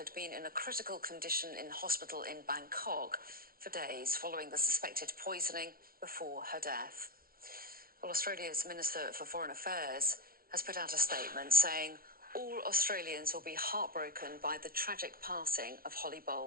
been in a critical condition in hospital in Bangkok for days following the suspected poisoning before her death. Well, Australia's Minister for Foreign Affairs has put out a statement saying all Australians will be heartbroken by the tragic passing of Holly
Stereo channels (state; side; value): late; left; 0.43 ms